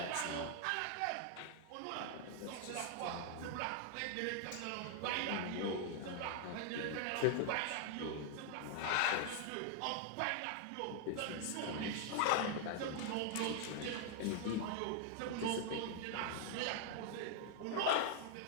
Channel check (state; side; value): different; both; correlation 0.00